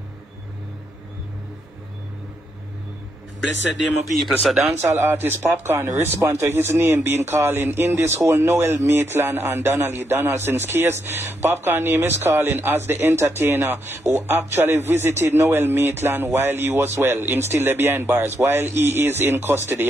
Blessed day, my people. So dancehall artist Popcorn respond to his name being calling in this whole Noel Maitland and Donna Lee Donaldson's case. Popcorn name is calling as the entertainer who actually visited Noel Maitland while he was well. Him still there behind bars while he is in custody.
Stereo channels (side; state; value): both; normal; correlation 0.79